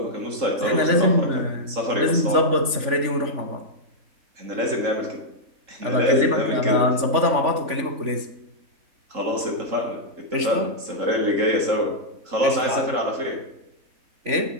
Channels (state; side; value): late; left; 3.5 ms